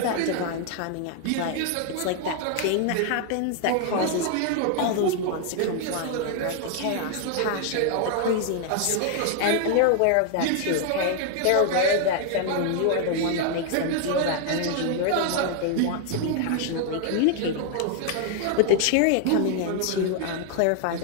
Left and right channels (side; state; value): both; different; correlation 0.00